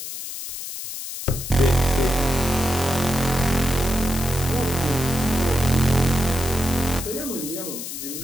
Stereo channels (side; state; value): left; noise; hiss, 8 dB below the sound